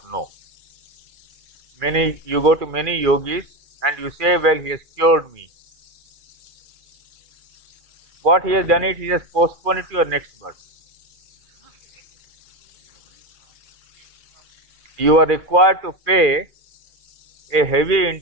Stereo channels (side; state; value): left; late; 2.4 ms